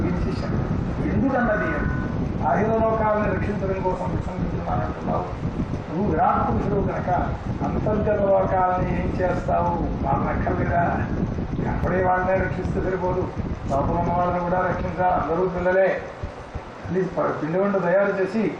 ఎందుకన్నది అఖిల లోకాలను రక్షించడం కోసం విశ్వసిస్తున్నానంటున్నావు. నువ్వు విరాట్ పురుషుడు కనుక అంతర్గత లోకాలని ఏం చేస్తావు? వాళ్ళని అక్కర్లేదా? అప్పుడే వాళ్ళనే రక్షిస్తే సరిపోదు, లోపల ఉన్న వాళ్ళని కూడా రక్షించాలి. అందరూ పిల్లలే. పిండి వంట తయారు చేసి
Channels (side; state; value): both; identical; correlation 1.00